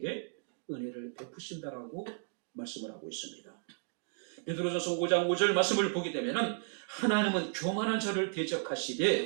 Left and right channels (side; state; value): left; silent; 55 dB below the other